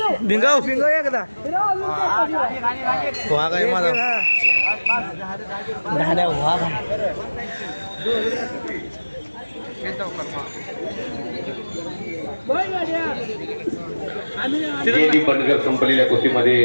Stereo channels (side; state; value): both; inverted; correlation -1.00